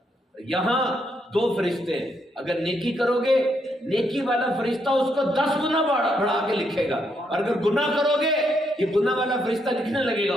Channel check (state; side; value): normal; both; correlation 0.77